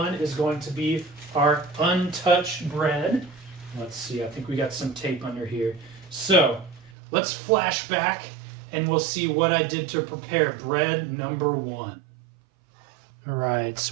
is going to be our untouched bread. Let's see, I think we got some tape under here. So, let's flash back and we'll see what I did to prepare bread number 1. All right,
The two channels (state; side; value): drops out; left; at 6.9 s